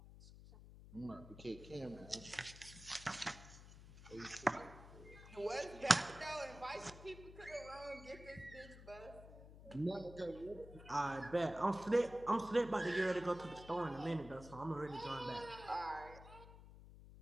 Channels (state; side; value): noise; left; hum, 16 dB below the sound